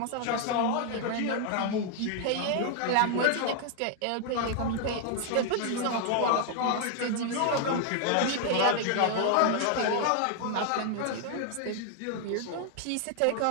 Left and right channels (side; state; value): both; different; correlation 0.00